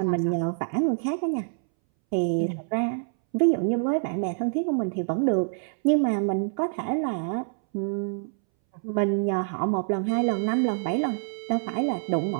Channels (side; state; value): left; silent; 61 dB below the other